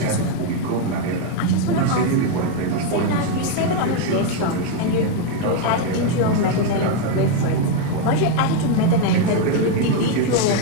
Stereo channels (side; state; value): both; different; correlation 0.01